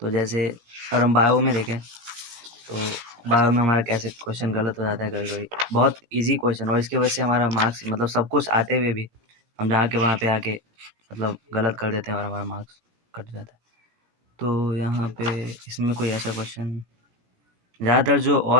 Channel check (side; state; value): left; late; 17 ms